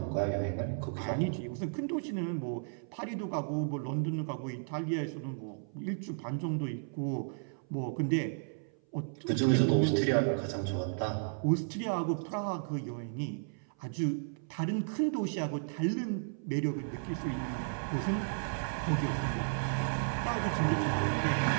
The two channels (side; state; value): left; silent; 55 dB below the other